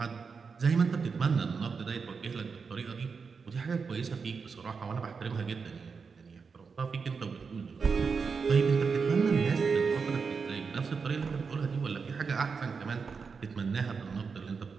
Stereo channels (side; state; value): left; quieter; 5.3 dB